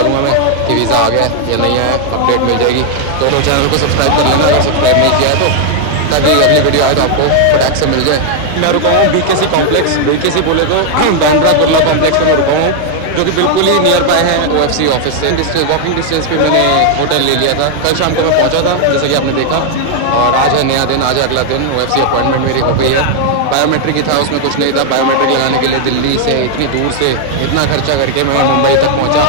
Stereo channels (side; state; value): both; different; correlation 0.00